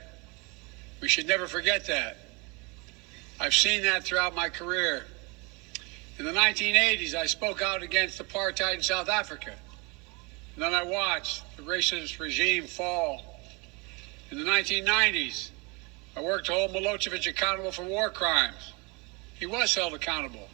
We should never forget that. I've seen that throughout my career. In the 1980s, I spoke out against apartheid in South Africa. And then I watched the racist regime fall. In the 1990s, I worked to hold Milosevic accountable for war crimes. He was held accountable.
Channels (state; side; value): quieter; left; 28.8 dB